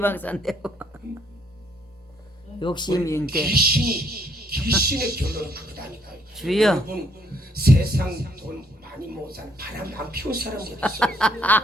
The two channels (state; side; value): normal; both; correlation 0.69